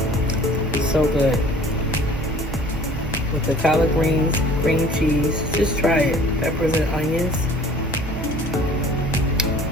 So good. With the collard greens, cream cheese. Just try it. Peppers and onions.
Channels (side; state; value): right; noise; hum, 9 dB below the sound